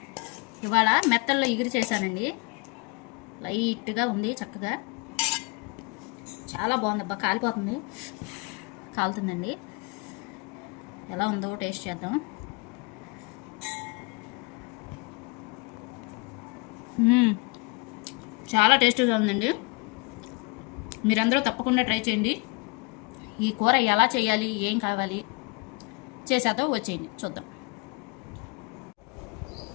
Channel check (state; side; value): quieter; right; 30.2 dB